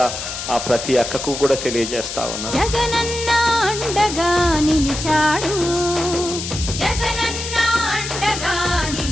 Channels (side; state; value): left; noise; hiss, 6 dB below the sound